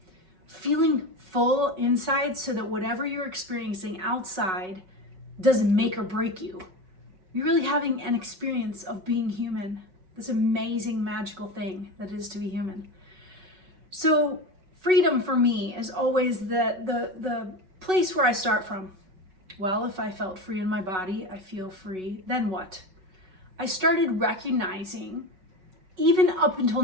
Feeling full inside so that whatever you're experiencing outside doesn't make or break you. You're really having an experience of being human, this amazing, magical thing that is to be human. So freedom for me is always the place where I start from. Well, if I felt free in my body, I feel free, then what? I started recognizing, even up until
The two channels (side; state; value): left; late; 5.3 ms